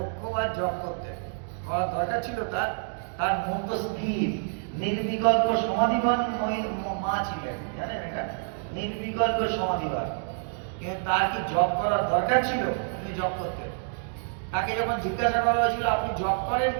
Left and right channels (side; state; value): left; silent; digital silence